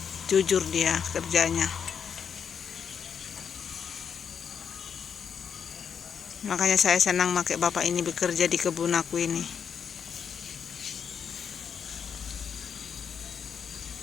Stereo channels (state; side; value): quieter; right; 7.2 dB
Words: Jujur dia kerjanya. Makanya saya senang pakai bapak ini bekerja di kebun aku ini.